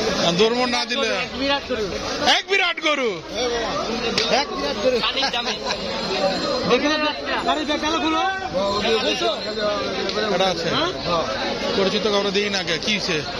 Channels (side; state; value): both; identical; correlation 1.00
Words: ধর্ম না দিলে এক বিরাট গরু। পরিচিত কাউরে দিই না, কি